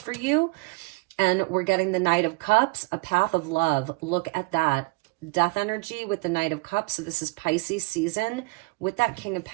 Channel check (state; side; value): quieter; left; 27.2 dB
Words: you. And we're getting the Knight of Cups, a path of love. Look at that. Death energy with the Knight of Cups. So this is Pisces season with that King of